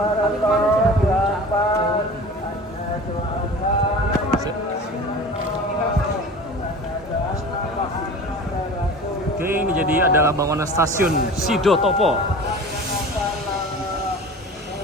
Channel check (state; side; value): normal; both; correlation 0.38